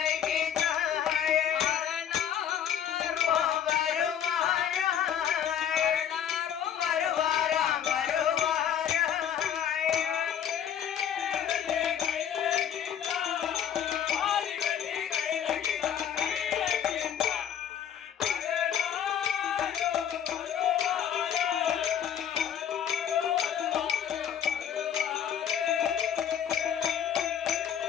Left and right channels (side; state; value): right; quieter; 9.2 dB